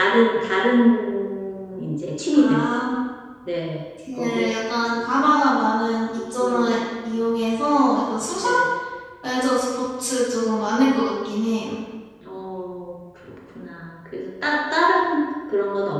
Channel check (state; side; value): identical; both; correlation 1.00